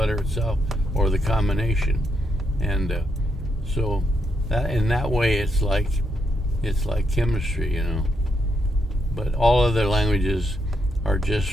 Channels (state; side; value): normal; both; correlation 0.79